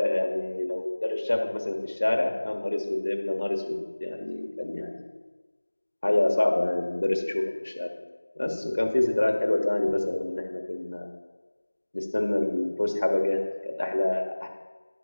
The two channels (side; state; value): both; inverted; correlation -1.00